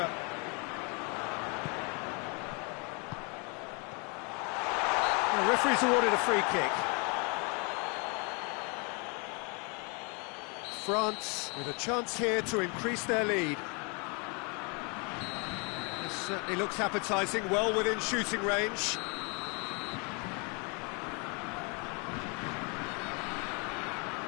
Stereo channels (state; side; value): quieter; right; 33.2 dB